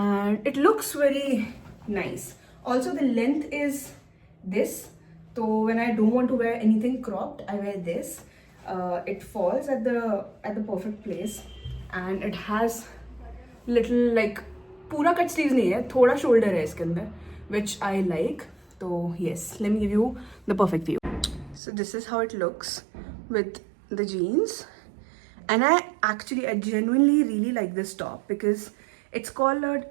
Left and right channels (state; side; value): drops out; left; at 21.6 s